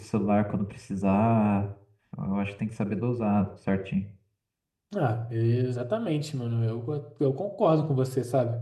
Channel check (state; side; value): identical; both; correlation 1.00